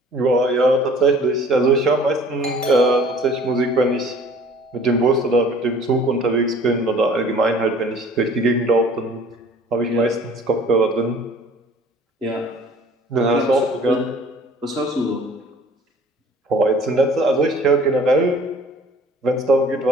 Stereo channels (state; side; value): normal; both; correlation 0.50